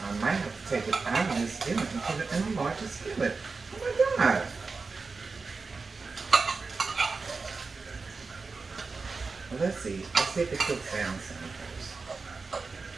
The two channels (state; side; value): quieter; left; 4.3 dB